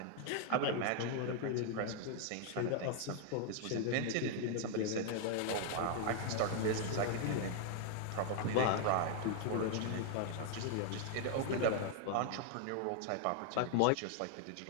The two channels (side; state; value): both; different; correlation 0.00